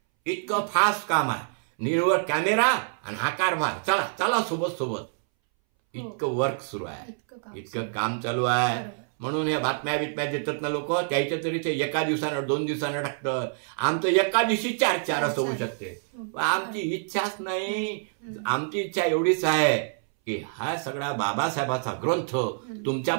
इतकं फास्ट काम आहे. निव्वळ कॅमेरा आणि हा कारभार, चला सोबत इतकं वर्क सुरू आहे, इतकं काम चालू आहे. म्हणून या बातम्या देतात ना लोक, त्याच्या तरी ते एका दिवसानं 2 दिवसानं टाकतात. आमचं एका दिवशी 4 असं होऊ शकते. आमची इच्छाच नाही. आमची इच्छा एवढीच आहे की हा सगळा बाबासाहेबाचा ग्रंथ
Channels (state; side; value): silent; left; 61 dB below the other